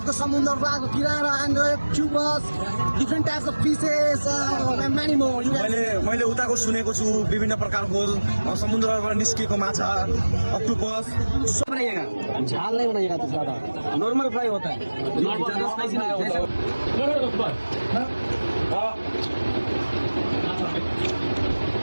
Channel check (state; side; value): inverted; both; correlation -1.00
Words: समुद्र रातको किनारा एन्ड क्युबस different types of fishes many more. मैले उताको सुनेको छु विभिन्न प्रकारको समुद्रबाट निस्किएको माछा अक्टोपस सब बनाइएगा, झाल नहीं बनाइएगा तो ज्यादा नॉर्मल फ्राई होता है।